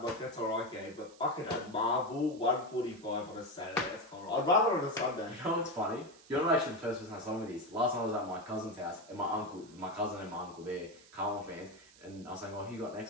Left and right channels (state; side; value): noise; right; hiss, 24 dB below the sound